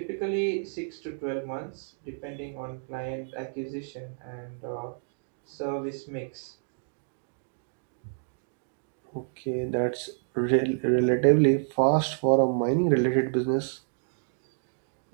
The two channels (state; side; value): silent; left; digital silence